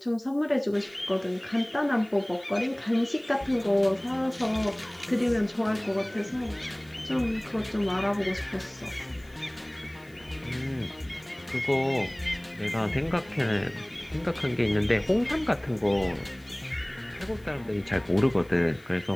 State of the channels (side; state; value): left; noise; hiss, 29 dB below the sound